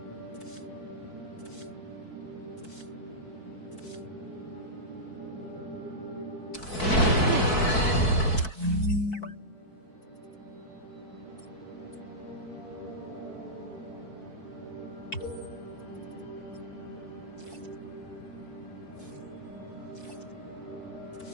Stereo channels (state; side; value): late; right; 4.6 ms